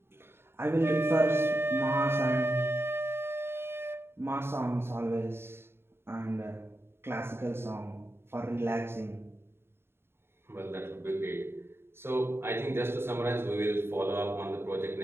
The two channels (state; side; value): late; left; 0.11 ms